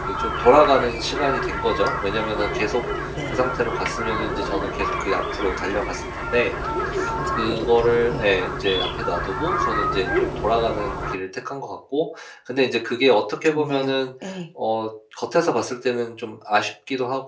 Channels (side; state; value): both; identical; correlation 1.00